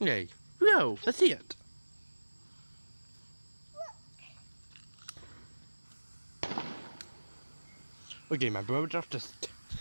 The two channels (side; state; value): both; inverted; correlation -1.00